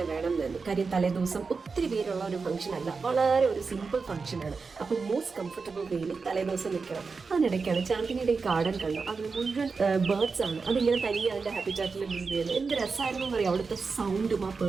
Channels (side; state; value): left; quieter; 4.7 dB